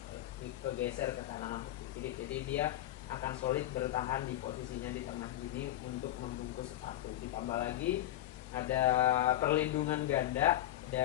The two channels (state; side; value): quieter; right; 13.9 dB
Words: kegeser ke kanan atau ke kiri. Jadi dia akan solid bertahan di posisinya di tengah gini untuk membungkus sepatu. Ditambah lagi ada perlindungan ganda